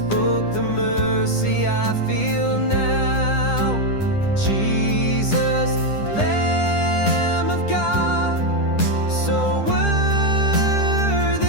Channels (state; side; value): late; right; 10 ms